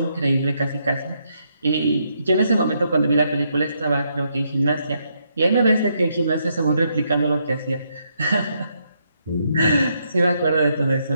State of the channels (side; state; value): both; inverted; correlation -0.77